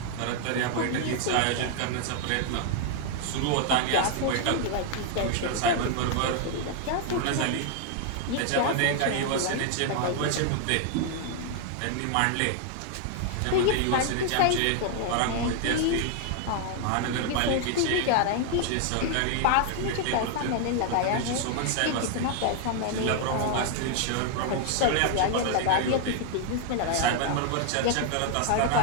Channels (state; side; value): different; both; correlation 0.00